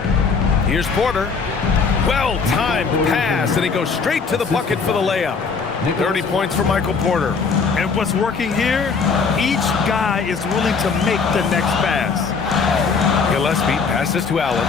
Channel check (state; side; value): quieter; right; 5.2 dB